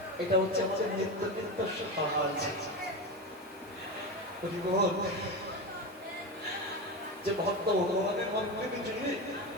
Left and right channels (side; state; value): both; normal; correlation 0.20